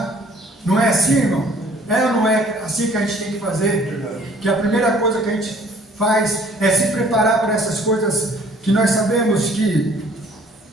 Não é assim, irmão? É ou não é assim que a gente tem que fazer? Que a primeira coisa que a gente faz é se preparar para essas coisas que nós sabemos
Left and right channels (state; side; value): normal; both; correlation 0.56